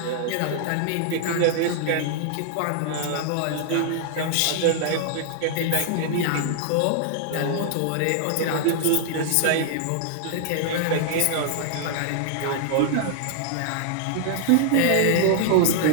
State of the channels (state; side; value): different; both; correlation -0.01